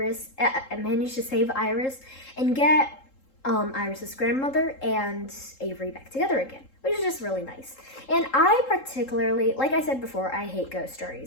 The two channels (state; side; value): late; right; 3.7 ms